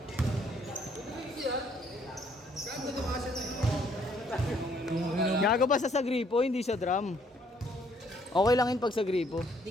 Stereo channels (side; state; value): both; normal; correlation 0.66